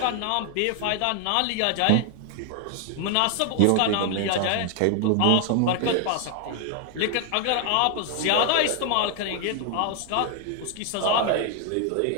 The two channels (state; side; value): different; both; correlation 0.00